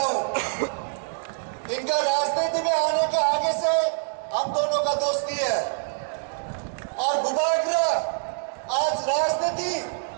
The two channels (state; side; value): silent; left; digital silence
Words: हूं। इनका राजनीति में आने के आगे से हम दोनों का दोस्ती है और बुबागरा आज राजनीति